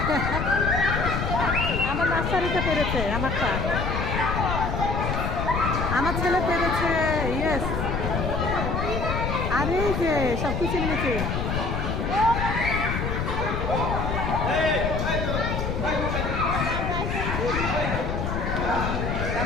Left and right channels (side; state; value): left; noise; rumble, 1 dB below the sound